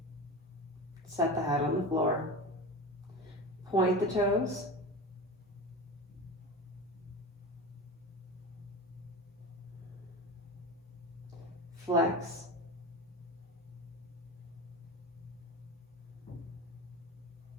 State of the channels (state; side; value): normal; both; correlation 0.28